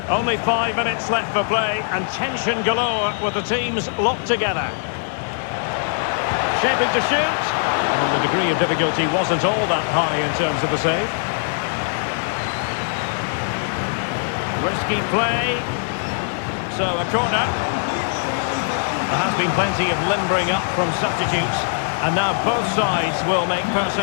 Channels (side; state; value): right; silent; 63 dB below the other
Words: Only 5 minutes left for play, and tension galore with the teams locked together. Shaping to shoot. And the degree of difficulty wasn't all that high in terms of the save. Risky play. So a corner. There has been plenty of limbering up from substitutes. And now both sides will make